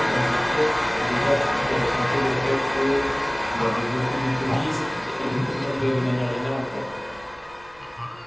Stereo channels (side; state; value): right; noise; rumble, 27 dB below the sound